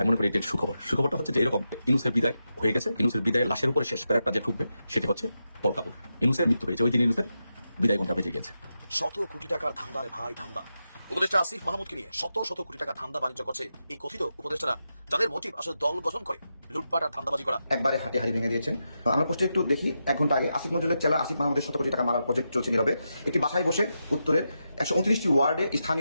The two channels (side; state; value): both; inverted; correlation -0.88